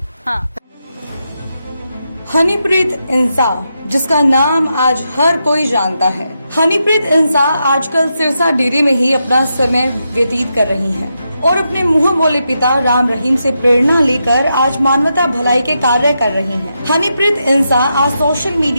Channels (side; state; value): both; inverted; correlation -0.85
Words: हाँ, हनीप्रीत इंसा, जिसका नाम आज हर कोई जानता है। हनीप्रीत इंसा आजकल सिरसा डेरे में ही अपना समय व्यतीत कर रही हैं और अपने मुंह बोले पिता राम रहीम से प्रेरणा लेकर आज मानवता भलाई के कार्य कर रही हैं। हनीप्रीत इंसा आज सोशल